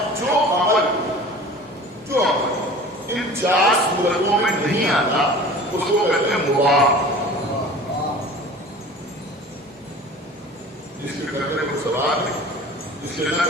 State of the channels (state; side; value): normal; both; correlation 0.42